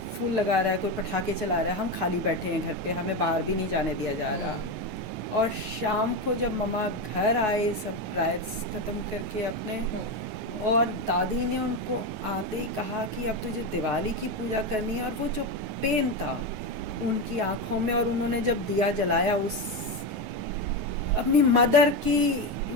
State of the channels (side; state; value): left; late; 9.4 ms